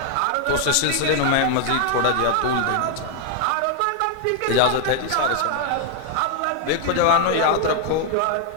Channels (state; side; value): different; both; correlation 0.00